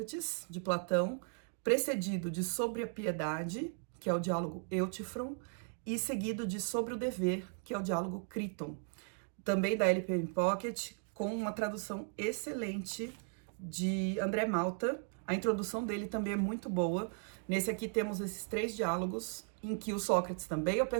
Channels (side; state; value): left; silent; 53 dB below the other